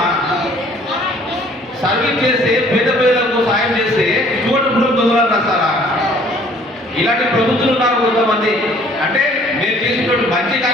సర్వీస్ చేస్తే పేద ప్రజలకు సాయం చేస్తే సుమోటుపురం దొంగలను రాస్తారా? ఇలాంటి ప్రభుత్వాలు ఉన్నారు కొంతమంది. అంటే మేము చేసినటువంటి మంచి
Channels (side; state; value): both; normal; correlation 0.56